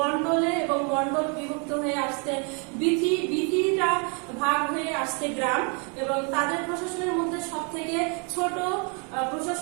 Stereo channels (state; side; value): quieter; left; 35.7 dB